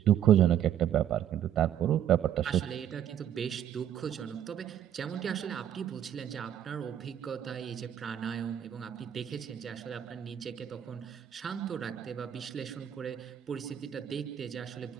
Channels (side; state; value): left; quieter; 10.1 dB